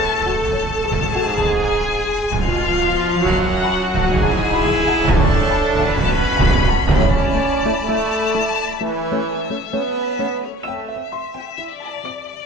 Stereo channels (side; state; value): both; normal; correlation 0.54